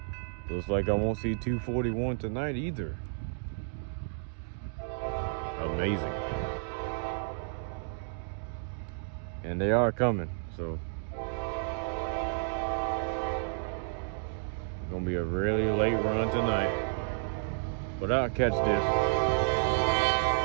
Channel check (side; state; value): left; silent; digital silence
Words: Looks like I won't see 241 tonight either. Amazing. And they are coming, so it's gonna be a really late run tonight. But I'll catch this.